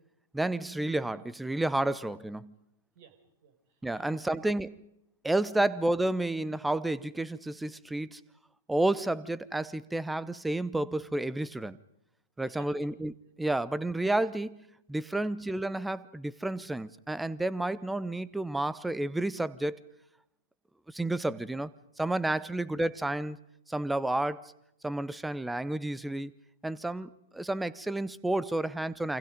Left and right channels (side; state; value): both; normal; correlation 0.95